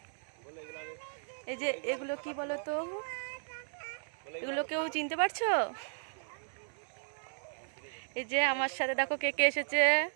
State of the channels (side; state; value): left; silent; 54 dB below the other